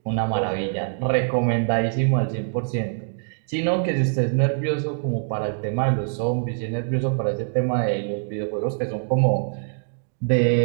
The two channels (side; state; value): left; silent; digital silence